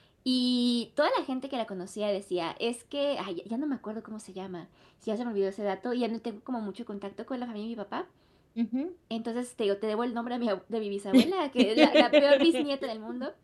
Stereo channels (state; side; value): identical; both; correlation 1.00